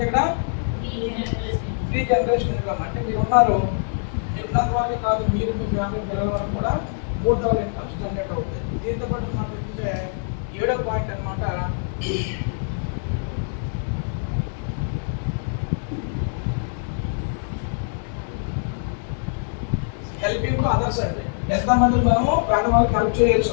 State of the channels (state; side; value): silent; right; digital silence